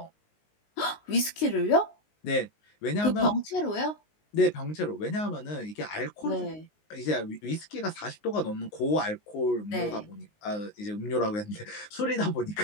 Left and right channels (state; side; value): late; right; 19 ms